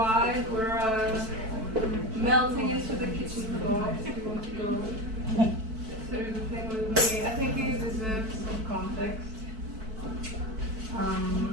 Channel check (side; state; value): left; late; 4.5 ms